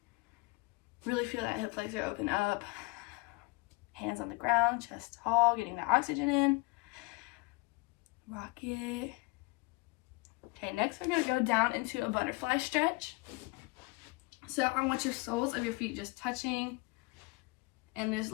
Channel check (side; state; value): right; quieter; 26.6 dB